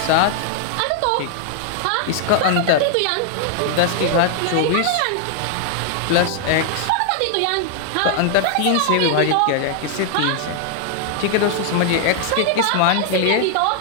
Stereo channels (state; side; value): different; both; correlation 0.00